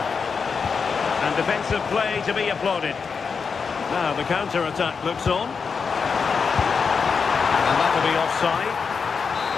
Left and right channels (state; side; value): quieter; right; 5.6 dB